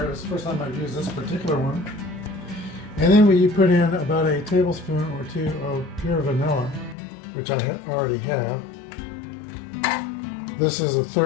It's the first time I've used this particular one. And then you put in about a tablespoon or two of pure vanilla, which I already have. This is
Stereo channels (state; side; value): drops out; right; at 7.0 s